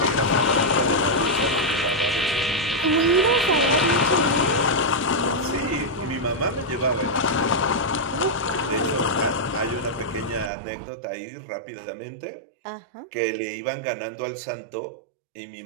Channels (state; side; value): drops out; left; at 10.5 s